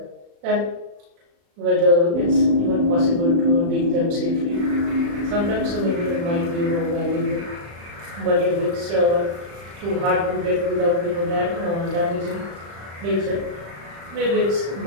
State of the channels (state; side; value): late; left; 35 ms